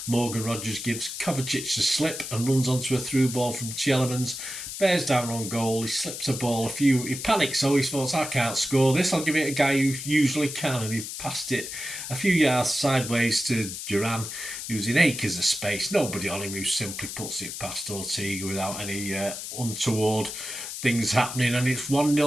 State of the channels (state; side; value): noise; left; hiss, 7 dB below the sound